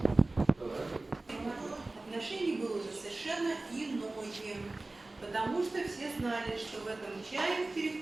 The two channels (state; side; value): quieter; left; 3.0 dB